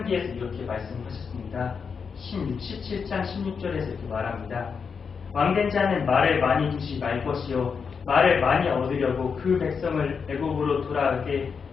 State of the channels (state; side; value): quieter; right; 5.9 dB